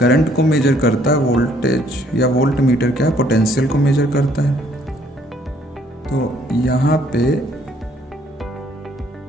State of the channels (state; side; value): normal; both; correlation 0.64